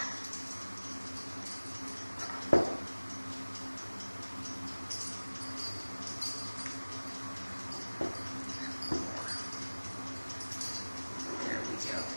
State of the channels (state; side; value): inverted; both; correlation -1.00